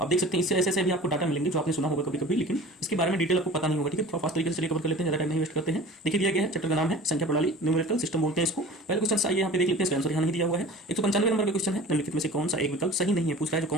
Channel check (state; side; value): normal; both; correlation 0.40